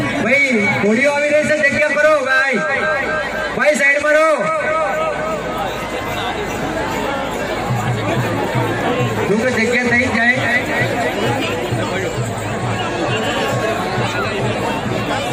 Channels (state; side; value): identical; both; correlation 1.00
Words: ભાઈ ઘોડીઓ આવી રહી છે, જગ્યા કરો ભાઈ. ભાઈ સાઈડમાં રહો. જો કે જગ્યા થઈ જાય.